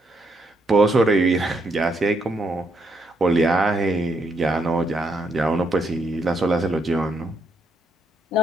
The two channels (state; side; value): normal; both; correlation 0.75